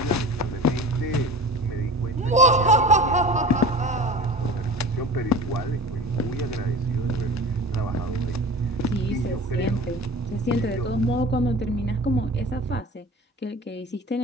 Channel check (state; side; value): normal; both; correlation 0.37